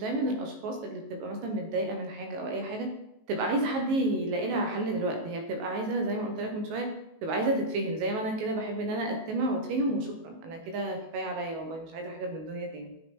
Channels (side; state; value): left; late; 19 ms